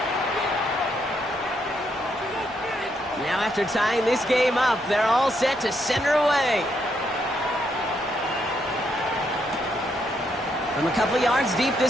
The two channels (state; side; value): normal; both; correlation 0.76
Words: Now after tying this game up, they're all set to center away. From a couple of yards deep,